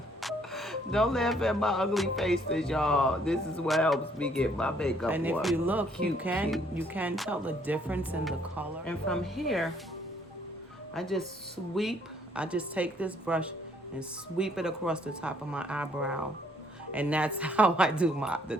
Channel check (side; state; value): both; normal; correlation 0.65